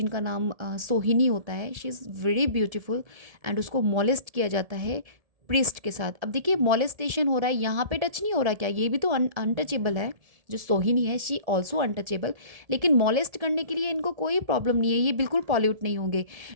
नाम सोहिनी होता है. She is very beautiful and उसको मॉलेस्ट किया जाता है प्रिस्ट के साथ. अब देखिए मॉलेस्टेशन हो रहा है, यहाँ पे टच नहीं हो रहा क्या, ये भी तो अनटचेबल है. जो सोहिनी है शी ऑल्सो अनटचेबल, लेकिन मॉलेस्ट करने के लिए इनको कोई प्रॉब्लम नहीं है, ये बिल्कुल पॉल्यूट नहीं होंगे.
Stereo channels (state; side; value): late; left; 1.7 ms